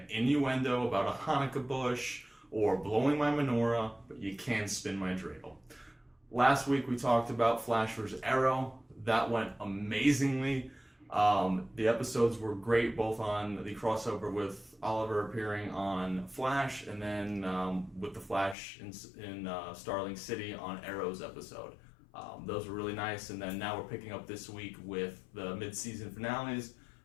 innuendo about a Hanukkah bush or blowing my menorah, but you can spin my dreidel. Last week we talked about Flash vs. Arrow. That went amazingly. The episodes were great, both on the crossover with Oliver appearing on Flash, and then with the Flash in Starling City on Arrow's episode. Those were really nice, and then now we're picking up this week with the mid-season finales.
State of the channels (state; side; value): drops out; right; at 18.6 s